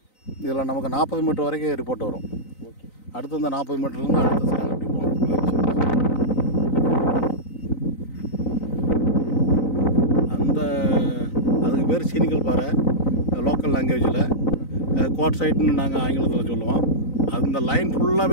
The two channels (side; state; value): right; late; 3.9 ms